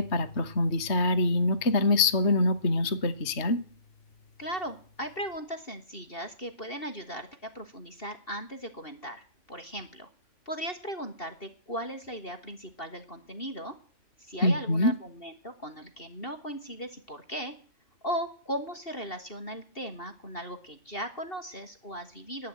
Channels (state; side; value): late; right; 3.2 ms